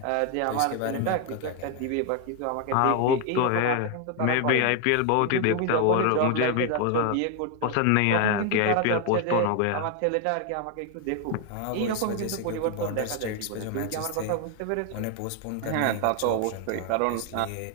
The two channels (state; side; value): different; both; correlation 0.01